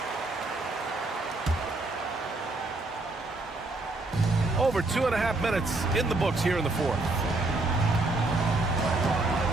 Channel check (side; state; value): left; quieter; 3.0 dB